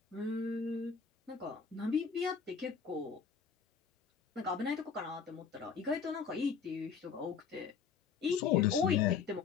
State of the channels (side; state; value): right; quieter; 6.2 dB